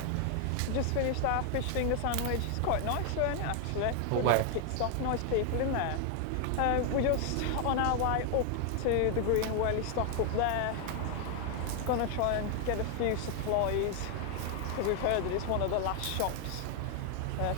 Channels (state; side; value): different; both; correlation 0.00